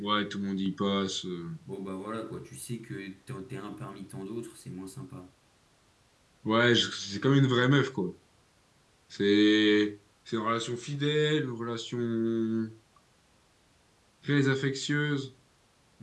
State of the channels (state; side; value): identical; both; correlation 1.00